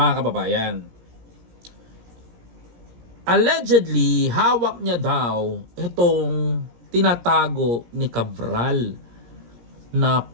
kababayan. Allegedly, hawak niya daw itong tinatago ni Cabral na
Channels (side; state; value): left; late; 17 ms